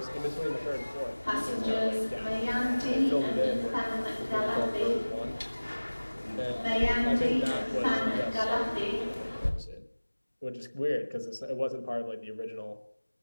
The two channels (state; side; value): inverted; both; correlation -1.00